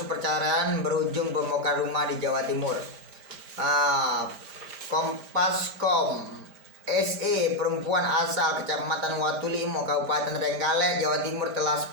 perceraian berujung pembongkar rumah di Jawa Timur. Kompaskom SE, perempuan asal Kecamatan Watulimo, Kabupaten Trenggalek, Jawa Timur, telah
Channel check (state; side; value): late; left; 5.0 ms